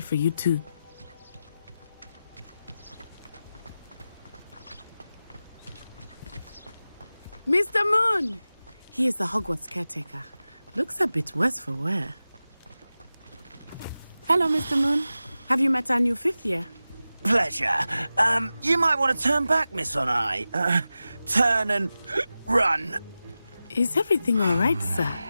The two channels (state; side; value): inverted; both; correlation -0.94